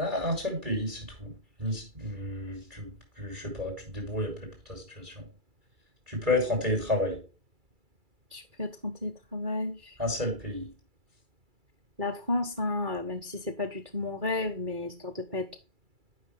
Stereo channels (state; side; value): late; left; 2.3 ms